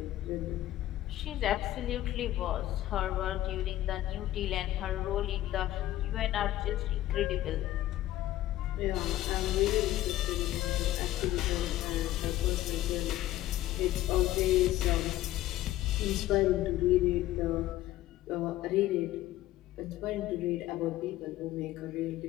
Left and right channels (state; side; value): quieter; right; 14.7 dB